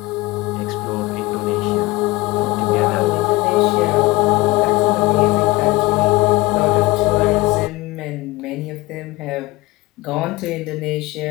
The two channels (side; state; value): right; quieter; 21.1 dB